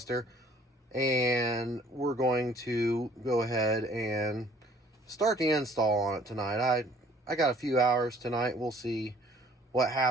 and we're going to go ahead and start the install on it tonight. I got a few hours tonight. We'll see what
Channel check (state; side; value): normal; both; correlation 0.57